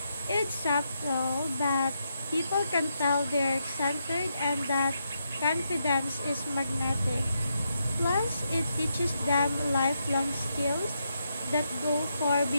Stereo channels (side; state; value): both; inverted; correlation -0.81